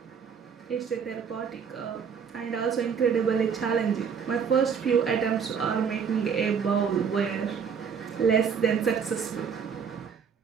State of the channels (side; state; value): left; quieter; 6.7 dB